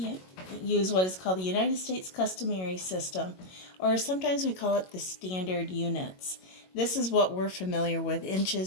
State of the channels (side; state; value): right; late; 22 ms